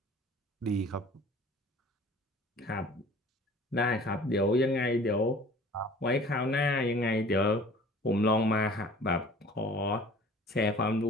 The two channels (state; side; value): normal; both; correlation 0.47